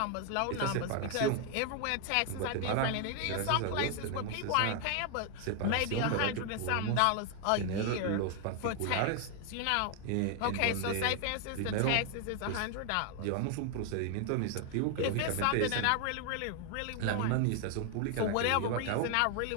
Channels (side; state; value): both; different; correlation 0.00